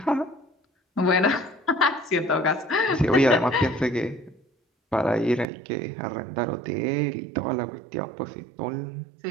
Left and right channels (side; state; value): left; drops out; at 5.5 s